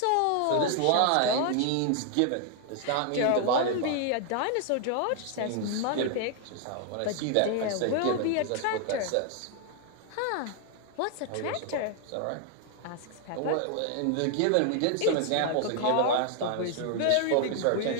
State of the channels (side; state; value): both; different; correlation 0.00